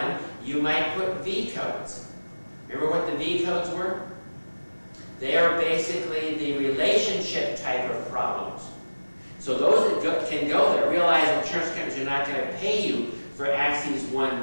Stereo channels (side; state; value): both; inverted; correlation -1.00